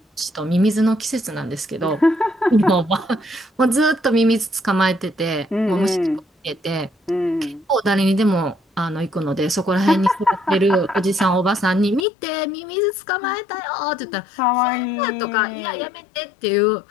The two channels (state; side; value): drops out; right; at 12.1 s